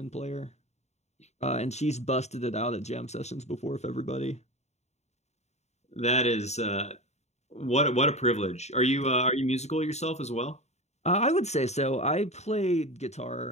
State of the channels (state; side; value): late; right; 0.32 ms